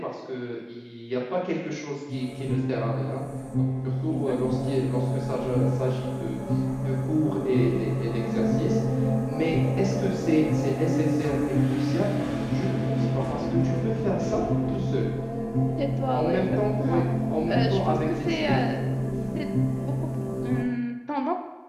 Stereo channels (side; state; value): both; identical; correlation 1.00